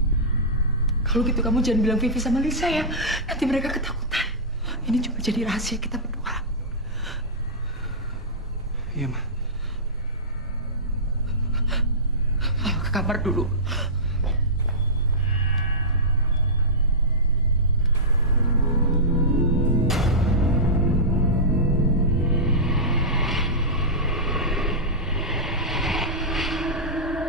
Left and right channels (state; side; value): normal; both; correlation -0.14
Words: Kalau gitu kamu jangan bilang Vivi sama Lisa ya. Nanti mereka ketakutan. Ini cuma jadi rahasia kita berdua. Iya, Ma. Ayo ke kamar dulu.